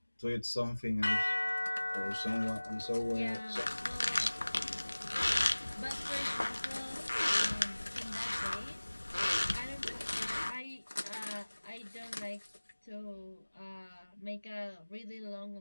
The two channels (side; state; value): both; inverted; correlation -1.00